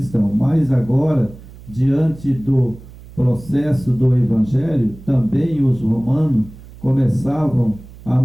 mas agora, diante do processo do evangelho, também os romanos começavam a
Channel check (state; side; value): noise; right; hum, 19 dB below the sound